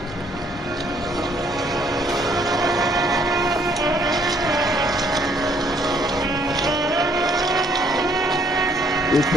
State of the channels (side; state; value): both; normal; correlation 0.65